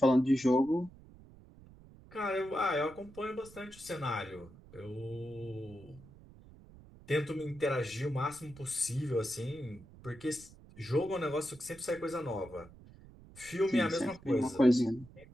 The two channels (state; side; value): noise; right; rumble, 21 dB below the sound